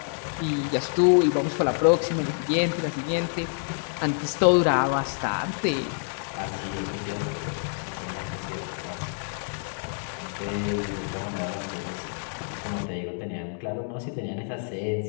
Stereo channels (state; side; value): silent; right; 57 dB below the other